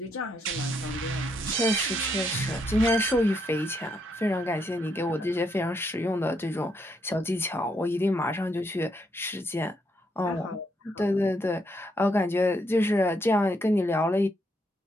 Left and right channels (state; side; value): normal; both; correlation 0.76